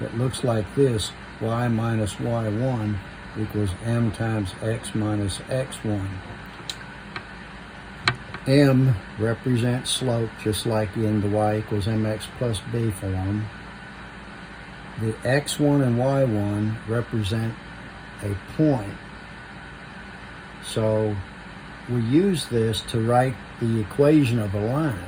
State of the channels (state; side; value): identical; both; correlation 1.00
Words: that looks like this: y minus y1 equals m times x minus x1. M represents slope, just like in the y equals mx plus b form. The x1 and y1 represent a point. So we use this to write the equation of a